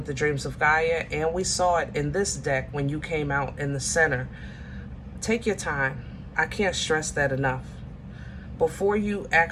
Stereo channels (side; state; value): both; identical; correlation 1.00